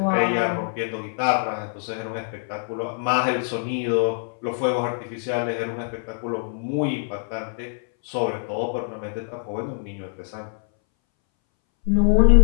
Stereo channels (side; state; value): right; silent; 61 dB below the other